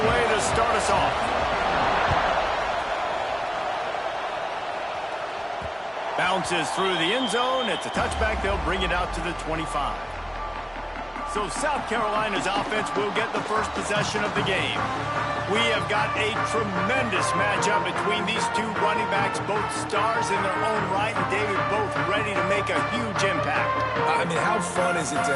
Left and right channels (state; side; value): identical; both; correlation 1.00